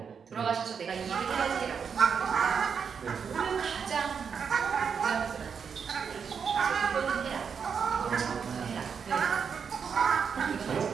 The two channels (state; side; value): quieter; left; 6.6 dB